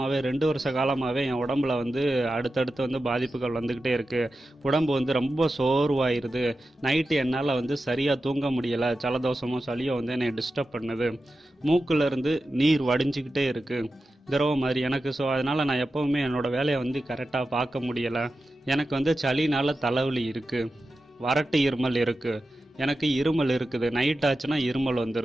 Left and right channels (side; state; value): both; normal; correlation 0.92